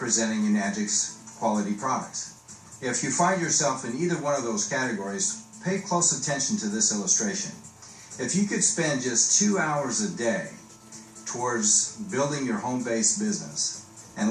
Enagic's quality products. If you find yourself in either one of those categories, pay close attention to this illustration. If you could spend just 2 hours a day towards building your home-based business, and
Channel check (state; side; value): identical; both; correlation 1.00